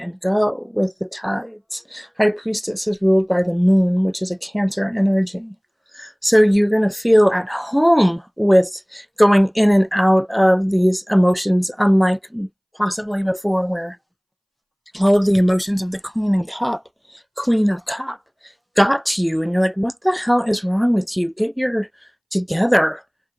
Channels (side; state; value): both; identical; correlation 1.00